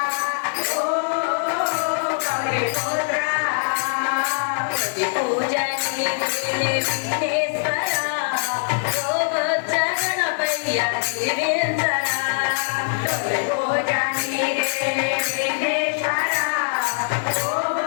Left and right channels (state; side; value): silent; right; digital silence